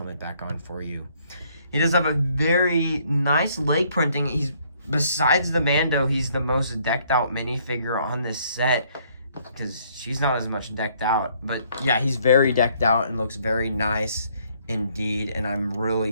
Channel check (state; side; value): inverted; both; correlation -0.65